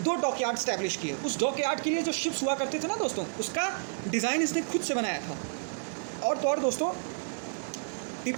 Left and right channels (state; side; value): silent; left; digital silence